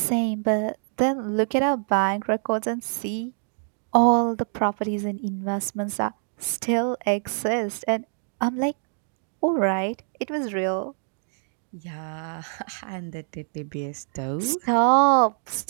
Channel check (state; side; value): silent; left; digital silence